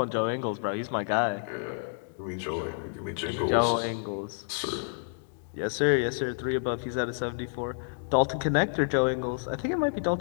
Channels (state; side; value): silent; right; digital silence